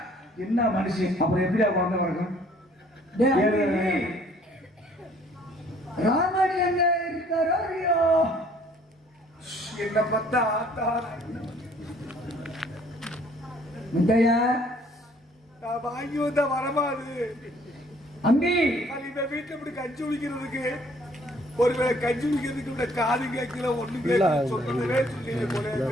என்ன மனுஷன், அப்புறம் எப்படியா குழந்தை பிறக்கும்? டேய், அம்பி, ராமன் எங்க இருக்காரோ இல்லையோ? என்ன பார்த்தா ஆத்தா முத்தையா நான் வாங்கி வந்த வரமாது. அம்பி இந்த வீட்டுல இப்படி கஞ்சி குடிக்கிறதுக்கு, ஒருவேளை கஞ்சி குடிக்கிறதுக்கு இந்த காது கேட்கல ஒண்ணு கேட்கல சொல்றதே சொல்லி போல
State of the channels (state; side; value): normal; both; correlation 0.59